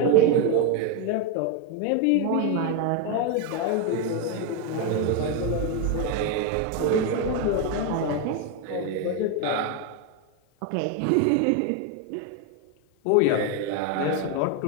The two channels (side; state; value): both; different; correlation 0.01